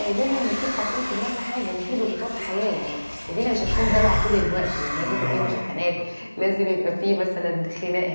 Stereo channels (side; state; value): both; inverted; correlation -1.00